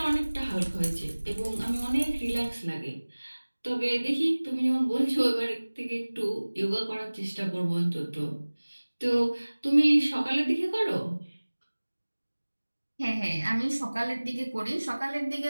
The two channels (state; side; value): inverted; both; correlation -1.00